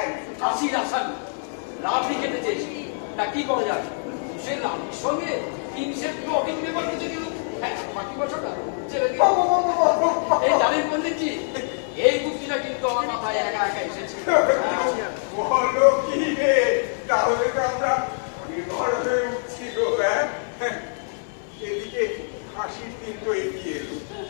কাশির আসামি রাবড়ি খেতে চেয়েছি, তা কি করা যাবে? সে রাবড়ির সঙ্গে 3 সেট ব্লটিং পেপার কিছু দিল। বাকি বছরটা ছেড়ে দিল। এই জানেন পণ্ডিতজি, এই বুদ্ধিটা কিন্তু আমার মাথায় একা একা এসেছে। বলো কি রে, তাহলে তো আমরা নির্ভর হয়ে উঠছি গো। এদিকে হাসির দিন তো এগিয়ে এলো,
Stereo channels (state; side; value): silent; right; digital silence